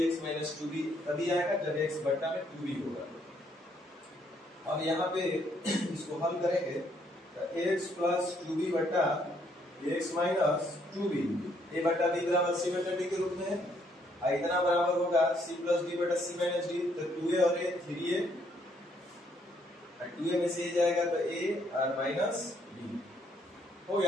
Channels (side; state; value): both; normal; correlation 0.70